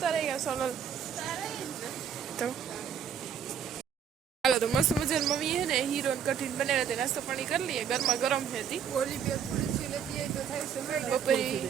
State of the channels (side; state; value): left; quieter; 8.0 dB